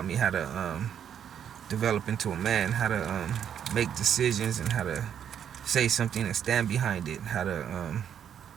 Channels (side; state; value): left; quieter; 8.9 dB